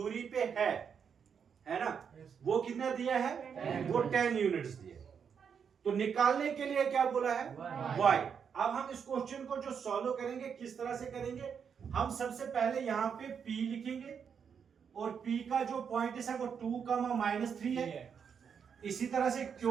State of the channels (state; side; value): quieter; left; 7.0 dB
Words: पे है ना, वो कितना दिया है, वो 10 यूनिट्स दिए। तो निकालने के लिए क्या बोला है, y। अब हम इस क्वेश्चन को जो सॉल्व करेंगे किस तरह से करेंगे, हम सबसे पहले यहाँ पे p लिखेंगे और p का जो पॉइंट है वो 2,-3 है। इसी तरह से